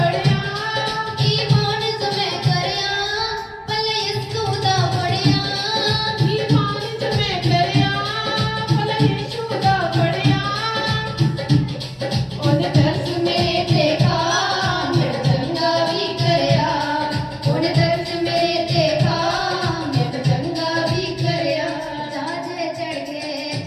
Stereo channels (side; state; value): both; identical; correlation 1.00